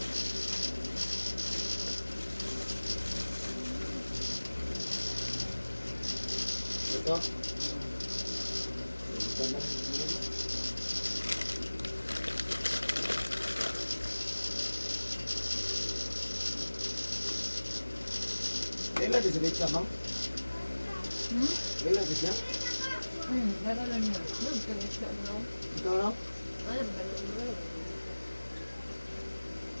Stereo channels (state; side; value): inverted; both; correlation -1.00